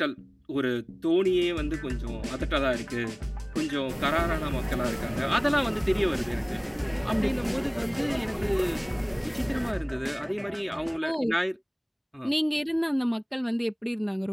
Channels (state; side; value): identical; both; correlation 1.00